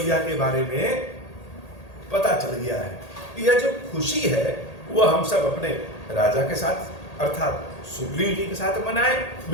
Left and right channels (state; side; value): late; right; 1.8 ms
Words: के बारे में पता चल गया है। यह जो खुशी है वो हम सब अपने राजा के साथ अर्थात सुग्रीव जी के साथ मनाए।